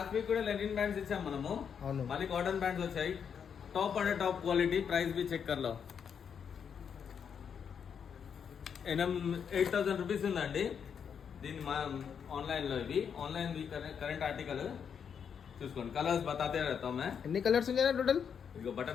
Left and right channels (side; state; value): right; quieter; 7.3 dB